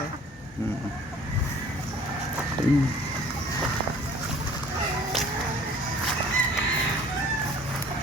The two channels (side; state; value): both; normal; correlation 0.51